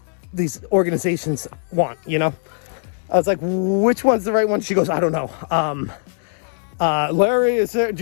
organizations want, I was like, which one's the right one? She goes, I don't know. Larry, is there, do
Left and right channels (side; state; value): right; silent; 65 dB below the other